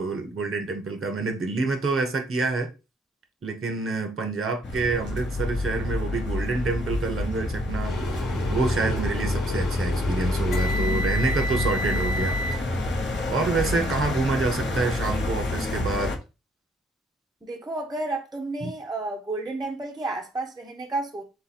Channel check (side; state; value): both; normal; correlation 0.66